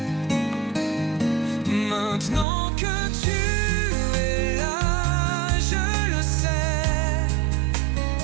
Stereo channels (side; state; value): left; drops out; at 2.5 s